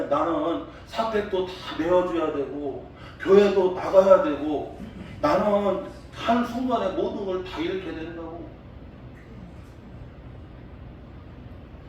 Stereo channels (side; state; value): both; identical; correlation 1.00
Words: 나는 사택도 다 내어줘야 되고 교회도 나가야 되고 나는 한 순간에 모든 걸 다 잃게 된다고.